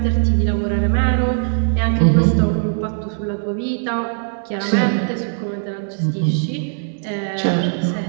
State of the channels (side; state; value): left; silent; digital silence